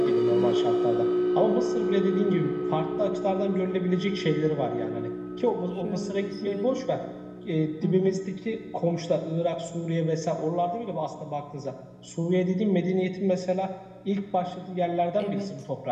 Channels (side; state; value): both; identical; correlation 1.00